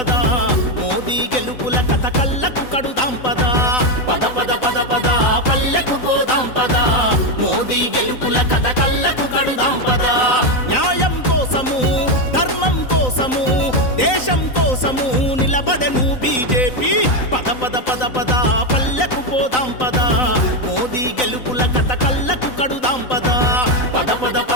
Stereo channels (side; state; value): right; late; 3.9 ms